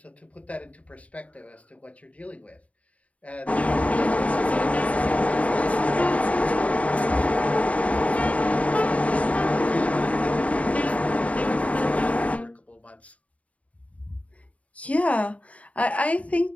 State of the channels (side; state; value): right; late; 0.067 ms